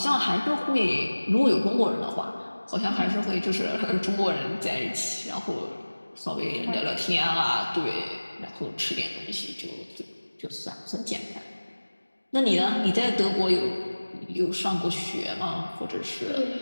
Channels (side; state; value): both; inverted; correlation -1.00